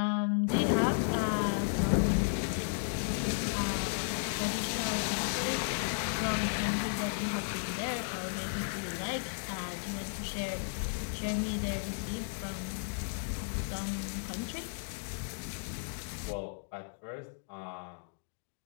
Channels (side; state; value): right; silent; digital silence